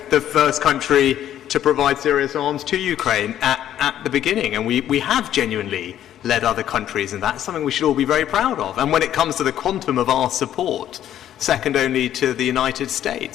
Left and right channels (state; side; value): quieter; right; 11.3 dB